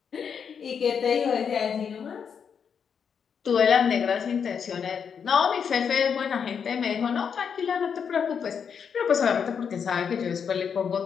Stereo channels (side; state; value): right; quieter; 6.9 dB